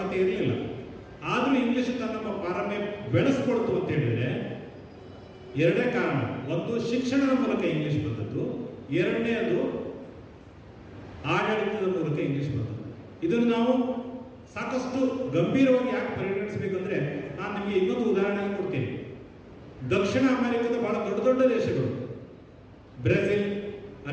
ಇರಲಿಲ್ಲ. ಆದರೂ ಇಂಗ್ಲಿಷ್ ತನ್ನ ಪಾರಮ್ಯ ಬೆಳೆಸ್ಕೊಳ್ತು ಅಂತ ಹೇಳಿದ್ರೆ ಎರಡೇ ಕಾರಣ. ಒಂದು, ಶಿಕ್ಷಣದ ಮೂಲಕ ಇಂಗ್ಲಿಷ್ ಬಂದದ್ದು. ಎರಡನೇದು, ಆಡಳಿತದ ಮೂಲಕ ಇಂಗ್ಲಿಷ್ ಬಂದದ್ದು. ಇದನ್ನು ನಾವು ಸಾಕಷ್ಟು ಗಂಭೀರವಾಗಿ ಯಾಕೆ ಪರಿಗಣಿಸಬೇಕಂದ್ರೆ ನಾನು ನಿಮಗೆ ಇನ್ನೊಂದು ಉದಾಹರಣೆ ಕೊಡ್ತೀನಿ. ದಕ್ಷಿಣ ಅಮೆರಿಕದ ಬಹಳ ದೊಡ್ಡ ದೇಶಗಳು, ಬ್ರೆಜಿಲ್,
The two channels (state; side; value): identical; both; correlation 1.00